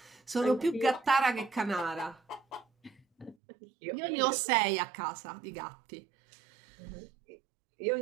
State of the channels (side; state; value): left; drops out; at 3.4 s